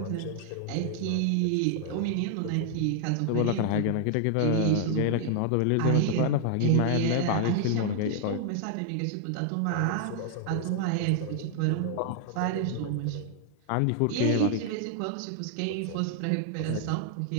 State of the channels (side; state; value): both; different; correlation 0.00